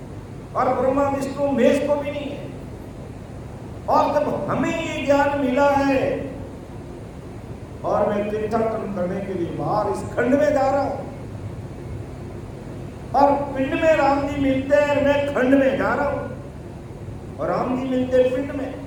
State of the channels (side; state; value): both; identical; correlation 1.00